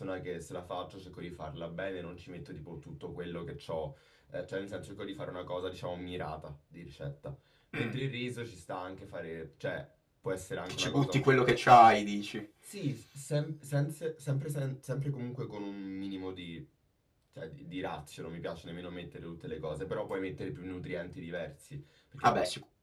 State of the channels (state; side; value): identical; both; correlation 1.00